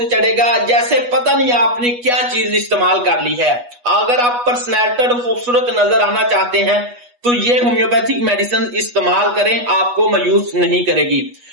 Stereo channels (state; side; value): late; left; 8.2 ms